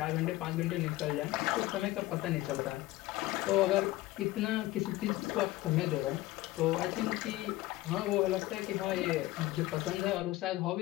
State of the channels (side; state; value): right; quieter; 17.5 dB